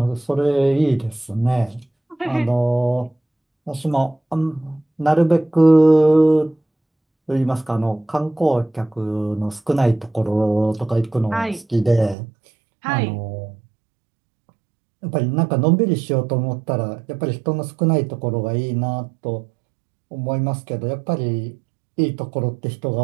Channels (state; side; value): drops out; left; at 12.2 s